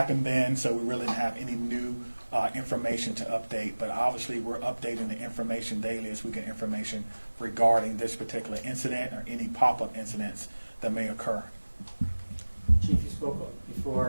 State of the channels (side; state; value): both; inverted; correlation -1.00